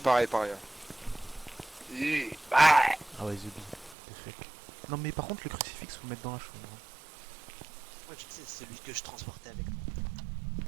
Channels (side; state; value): left; drops out; at 4.0 s